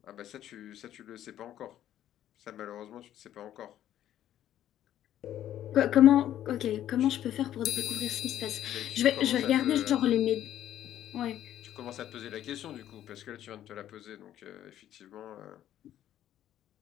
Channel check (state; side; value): quieter; right; 11.8 dB